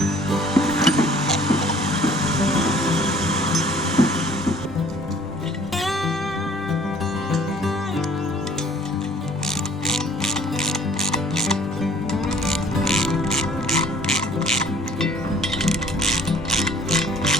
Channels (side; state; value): both; normal; correlation 0.54